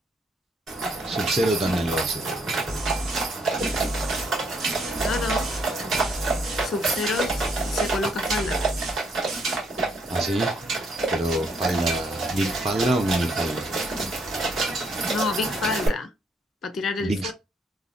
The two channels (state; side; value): normal; both; correlation 0.71